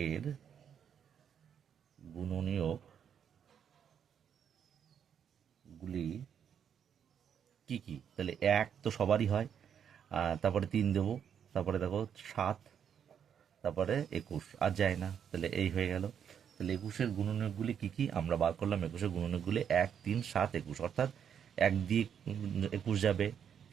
গুণনীয়ক গুলি কি কি। তাহলে 1 তো সবারই হয়, তারপরে 3 দেবো, তারপরে দেখো 7, তারপরে 21, আর যায় না। তাহলে এই হয়ে গেল। তাহলে 21-এর গুণনীয়কগুলি কি কি আমরা বার করলাম। 21-এর গুণনীয়কগুলি 1 3 7 21, অর্থাৎ 1 দিয়ে 21 যাবে,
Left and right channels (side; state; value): left; quieter; 8.2 dB